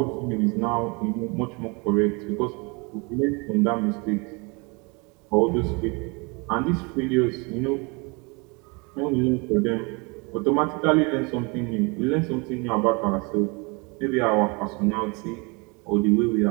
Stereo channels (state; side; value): quieter; left; 29.8 dB